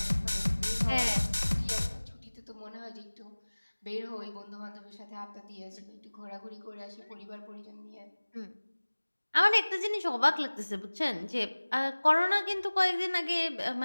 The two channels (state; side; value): inverted; both; correlation -1.00